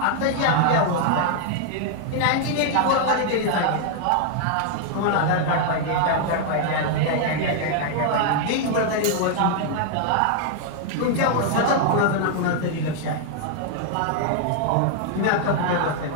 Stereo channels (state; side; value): different; both; correlation 0.00